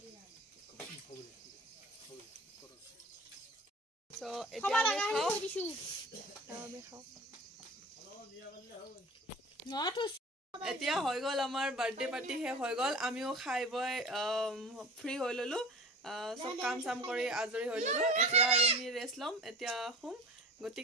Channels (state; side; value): normal; both; correlation 0.40